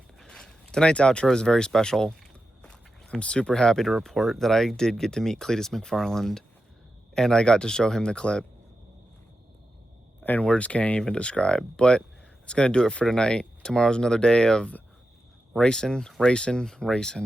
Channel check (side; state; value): both; normal; correlation 0.90